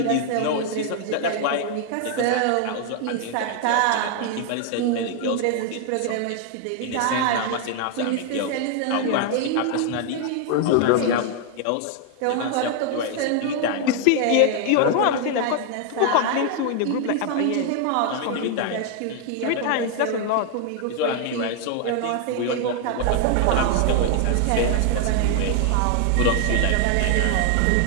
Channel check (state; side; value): different; both; correlation 0.00